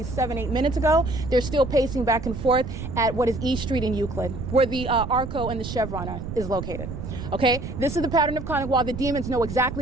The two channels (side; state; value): right; noise; rumble, 7 dB below the sound